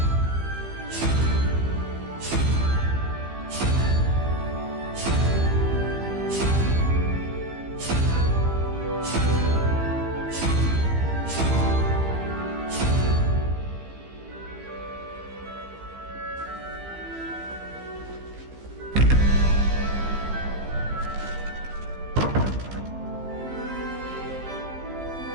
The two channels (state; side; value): late; left; 15 ms